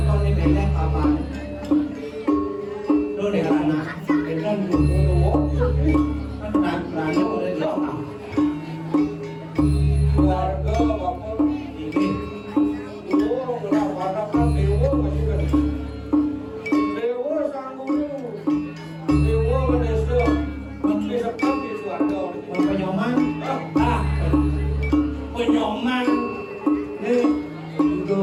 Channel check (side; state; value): both; identical; correlation 1.00